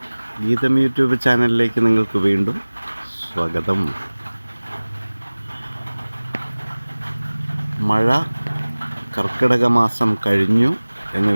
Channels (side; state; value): both; inverted; correlation -1.00